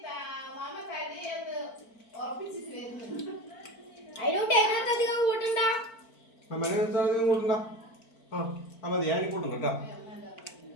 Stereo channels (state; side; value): late; right; 4.4 ms